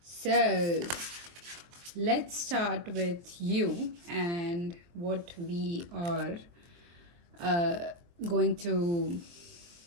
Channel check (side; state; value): left; late; 23 ms